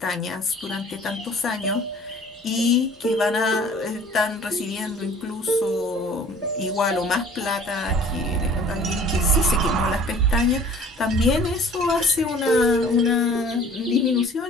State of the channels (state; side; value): normal; both; correlation 0.50